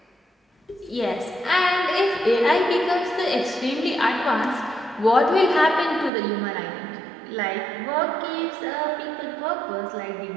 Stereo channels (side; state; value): left; drops out; at 6.1 s